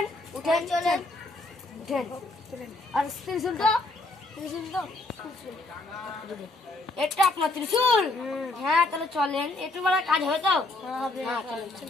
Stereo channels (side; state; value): both; normal; correlation 0.70